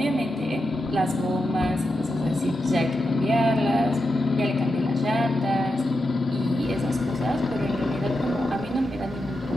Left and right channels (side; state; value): both; normal; correlation 0.88